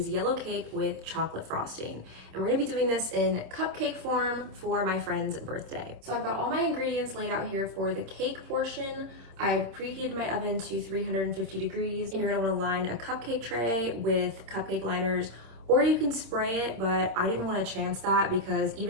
yellow cake with chocolate frosting. And we're gonna be doing this in cupcake form for my friend's birthday. So I've got all my ingredients laid out here for the cake portion. I've preheated my oven to 350 degrees, and you're gonna wanna line a cupcake tray with cupcake liners, or you can spray it, but I didn't want to chance that because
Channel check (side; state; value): left; late; 26 ms